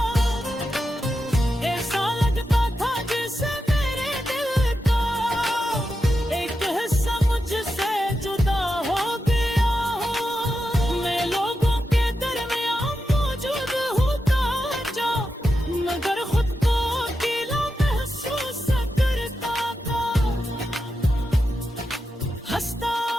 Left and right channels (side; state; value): both; normal; correlation 0.88